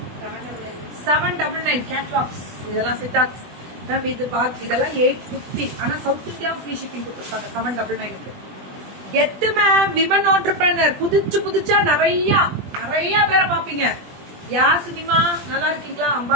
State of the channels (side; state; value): left; late; 20 ms